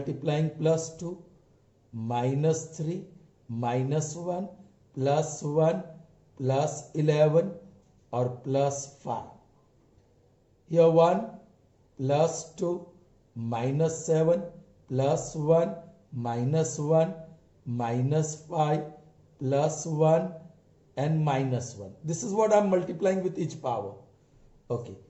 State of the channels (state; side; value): identical; both; correlation 1.00